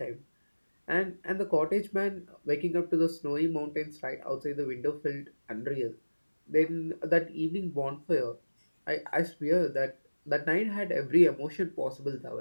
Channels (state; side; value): inverted; both; correlation -1.00